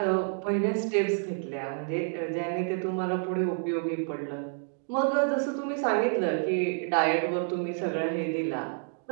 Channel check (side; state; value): left; silent; 59 dB below the other